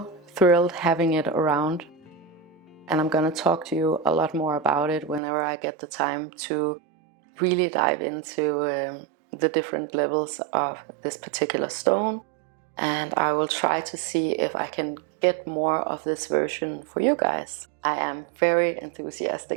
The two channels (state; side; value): drops out; left; at 5.2 s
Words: thrilled having it around. And I'm gonna talk to you a lot more about it whenever I get the time to really dive into the different levels of this particular stone. And I will try to see if I can get more of this version for you guys. I am very